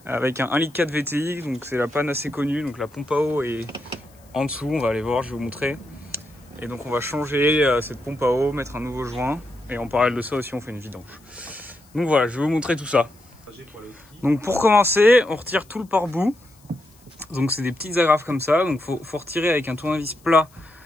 avec un 1,4 litre VTI, donc c'est la panne assez connue, donc la pompe à eau est en dessous, on va aller voir, je vais vous montrer. Et donc on va changer cette pompe à eau, mettre un nouveau joint, et en parallèle de ça aussi on fait une vidange. Donc voilà, je vais vous montrer tout ça. Donc pour commencer, on retire tout le pare-bout, donc c'est des petites agrafes comme ça, donc faut retirer avec un tournevis plat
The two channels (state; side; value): noise; left; hiss, 29 dB below the sound